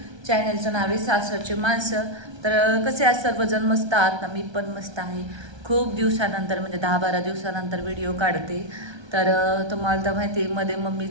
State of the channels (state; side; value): late; left; 1.3 ms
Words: चॅनलचं नाव आहे सासरचे माणसं. तर कसे आज सर्वजण मस्त आहात ना? मी पण मस्त आहे. खूप दिवसानंतर म्हणजे 10-12 दिवसानंतर व्हिडिओ काढते. तर तुम्हाला तर माहिती आहे, मध्ये